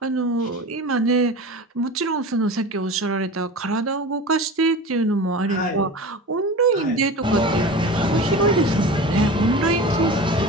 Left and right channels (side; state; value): both; normal; correlation 0.33